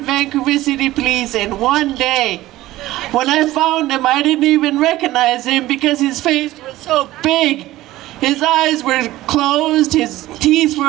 Vancouver City Police in one day. When I found him, I didn't even recognize him because his face was so big. His eyes were closed, his teeth were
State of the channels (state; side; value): quieter; left; 16.4 dB